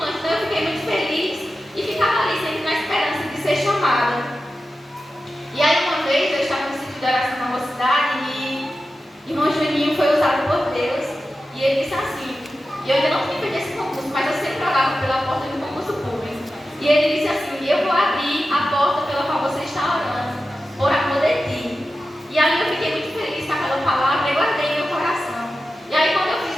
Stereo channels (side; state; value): both; normal; correlation 0.92